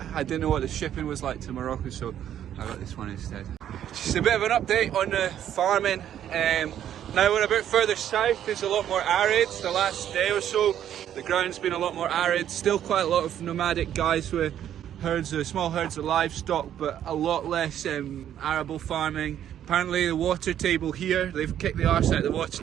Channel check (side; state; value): left; quieter; 10.5 dB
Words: I didn't know what the shipping was like to Morocco, so I got this one instead. Just a bit of an update on the farming. Now we're a bit further south, it's a lot more arid. The last day or so, the ground's been a lot more arid. Still quite a lot of nomadic guys with herds of, small herds of livestock, but a lot less arable farming. Apparently the water table here, they've kicked the arse out of the